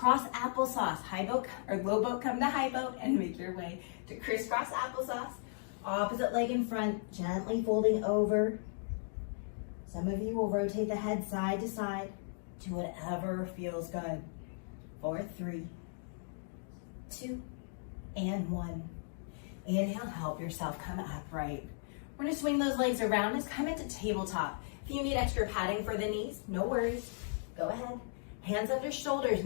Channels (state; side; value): silent; right; digital silence